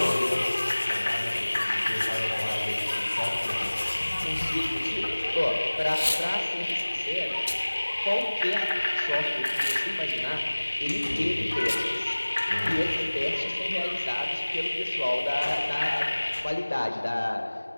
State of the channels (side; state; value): both; inverted; correlation -1.00